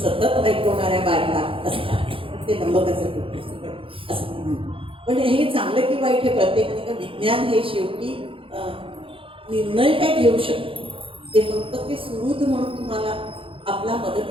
ऐकवणाऱ्या बायका असतात. ते नंबकाचं कुठं असं म्हणून. पण हे चांगलं की वाईट हे प्रत्येकाने का विज्ञान हे शेवटी निर्णय काय घेऊ शकतो, ते फक्त ते सुरुद म्हणून तुम्हाला आपला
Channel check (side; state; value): left; late; 0.26 ms